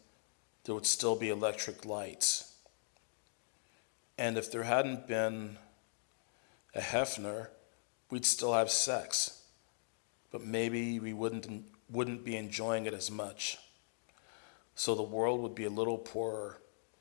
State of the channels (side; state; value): right; silent; digital silence